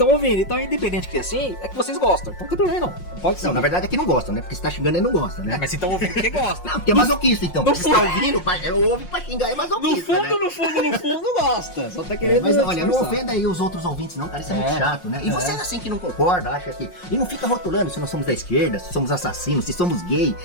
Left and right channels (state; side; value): late; right; 5.6 ms